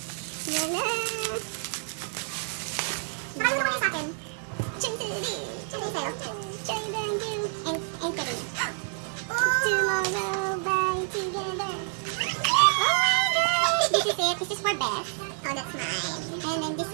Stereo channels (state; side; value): silent; left; 56 dB below the other